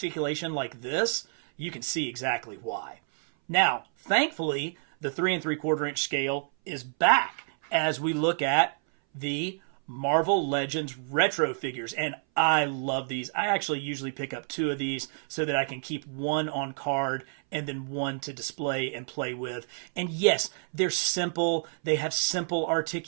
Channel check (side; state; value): left; silent; 58 dB below the other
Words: like this, you can see exactly why. Now, thankfully, the 3 3/4 inch scale is back as we look at the Marvel Legends retro figures, and I love these. I actually usually pick up 2 of these so that I can keep one on card and then one to display and play with. And yes, they're simple. They have simple